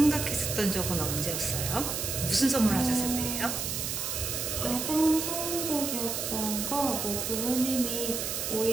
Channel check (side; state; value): right; noise; hiss, 2 dB below the sound